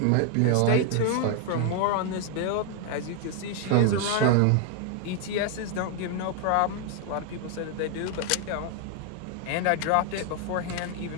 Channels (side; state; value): both; different; correlation 0.01